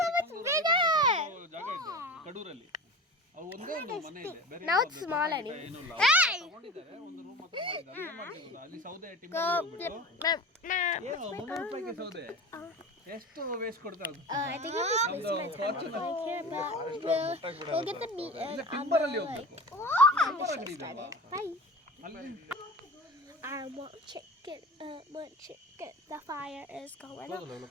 so much bigger. ಜಾಗ ಇದೆ ಕಡೂರಲ್ಲಿ. ಅವು ಒಂದೇ ಒಂದು ಮನೆ ಇದೆ. ಬೇರೆ Now it's small anyway. Hey! ತಗೊಂಡಿದ್ದಾರೆ ಒಂದು ರೂಮ್ ಮಾತ್ರ ಮಾಡಿದ್ದಾರೆ. ಏನು ಮಾಡ್ತಿದ್ರು ಅಲ್ಲಿ ಸೌದೆ ಟಿಂಬರ್ ಹೋಗ್ಬಿಟ್ಟು. ಏನು 300 ರೂಪಾಯಿಗೆ ಸೌದೆ? ಎಷ್ಟು ವೇಸ್ಟ್ ಕೊಡ್ತಾ ಅದು? I think it was we'll get the meat and timber ಅಲ್ಲಿ ಹೋಗ್ಬೇಕು. ಟಿಂಬರ್ ಅಂಗಡಿ ಇದೆ ಅಲ್ವಾ? Bye. ಅಲ್ಲಿ I want chicken. Want chicken. The fire is going out.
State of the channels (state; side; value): normal; both; correlation 0.34